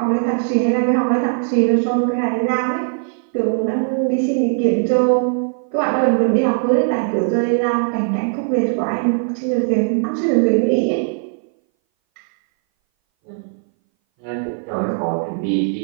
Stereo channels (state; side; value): silent; left; 60 dB below the other